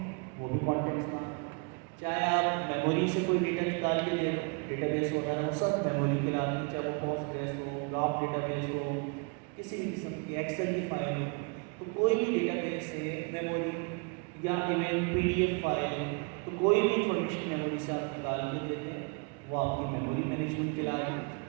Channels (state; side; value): quieter; left; 34.1 dB